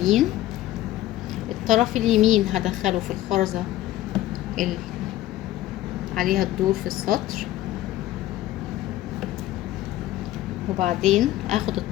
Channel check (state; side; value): quieter; right; 14.7 dB